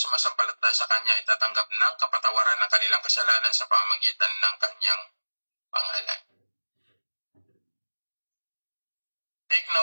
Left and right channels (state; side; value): inverted; both; correlation -1.00